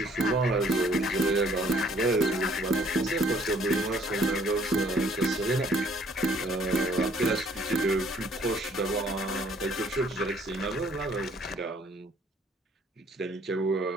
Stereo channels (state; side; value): normal; both; correlation 0.61